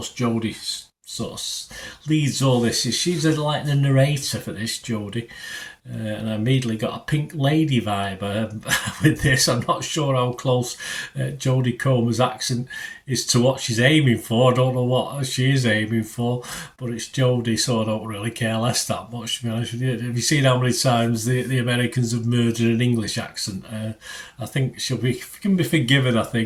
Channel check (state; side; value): identical; both; correlation 1.00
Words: Jodie sort of leads all this. She's like the narrator for this, Jodie. And I immediately got a Pink Lady vibe with this. I'm not sure how close Jodie Comer's accent is to what she's aiming for. I don't know what she is aiming for, but it's Jodie, so I don't really care less that much, to be honest with you. Have you seen how many times the Americans have murdered an English accent? I think she can be forgiven, I